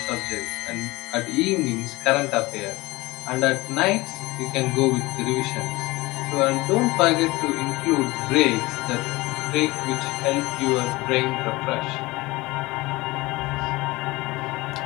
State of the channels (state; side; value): quieter; right; 21.3 dB